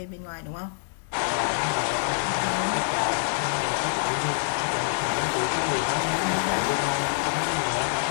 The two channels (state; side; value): silent; right; digital silence